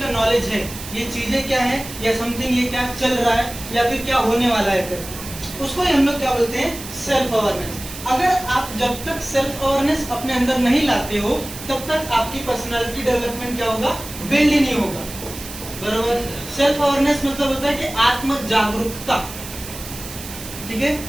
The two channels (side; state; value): right; noise; hiss, 12 dB below the sound